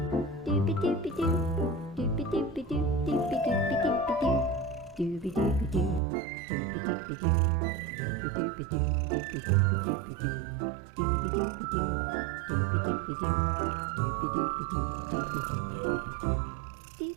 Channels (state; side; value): drops out; left; at 6.0 s